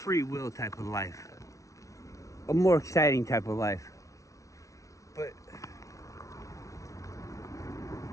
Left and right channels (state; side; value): late; right; 0.16 ms